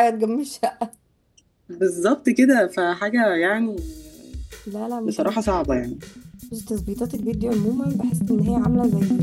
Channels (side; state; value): both; identical; correlation 1.00